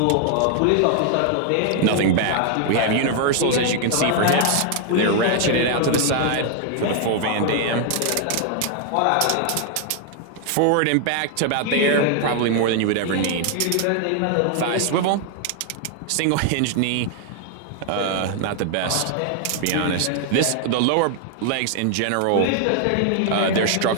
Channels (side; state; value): both; different; correlation 0.00